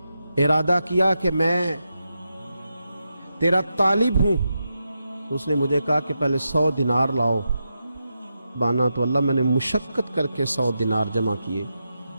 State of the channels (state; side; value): inverted; both; correlation -0.87